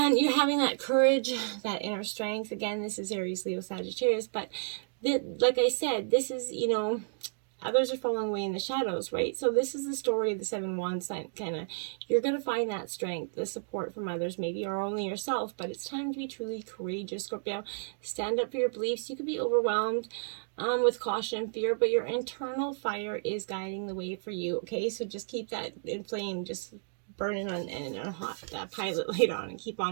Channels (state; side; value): silent; left; digital silence